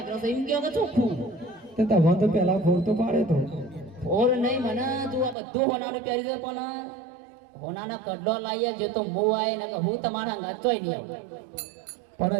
અગ્રસ એમ કેવો કે ચોખ્ખું તે તમને તો પહેલા ફોર તો પાડે તો. ફોર નહીં મને તું આ બધું હોનાનું પહેરી દે, પણ હોનાના કડલો લાવીએ જે તો મો આય ને કે હું તમારા ગાચોય નહીં આવું. પણ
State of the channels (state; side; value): drops out; left; at 5.4 s